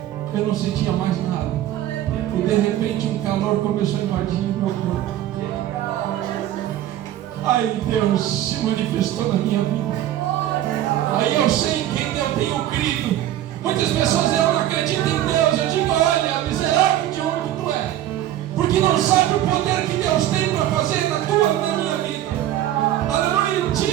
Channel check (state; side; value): quieter; left; 12.7 dB